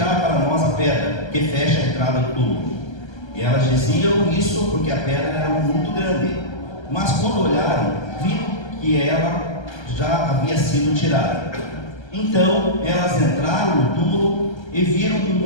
para nós a pedra que fecha a entrada do túmulo? E elas diziam isso porque a pedra era muito grande. Mas quando olharam, viram que ela já havia sido tirada. Então elas entraram no túmulo e viram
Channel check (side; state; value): right; late; 1.3 ms